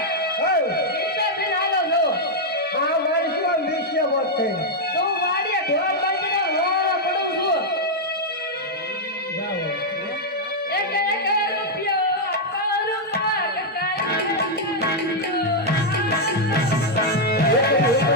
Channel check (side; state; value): both; normal; correlation -0.02